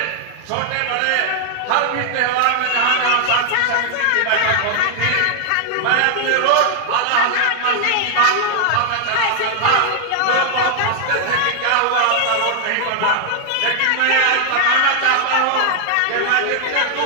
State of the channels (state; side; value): different; both; correlation 0.00